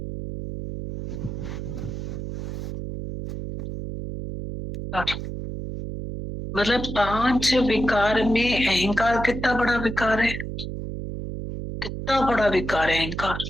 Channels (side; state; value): right; noise; hum, 6 dB below the sound